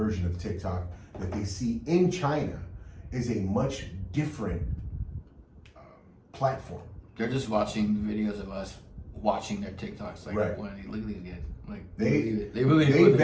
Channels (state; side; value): identical; both; correlation 1.00